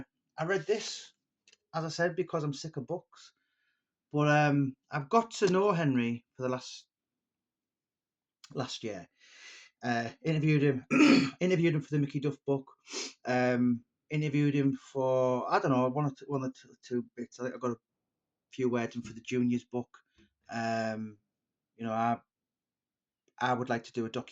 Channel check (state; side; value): identical; both; correlation 1.00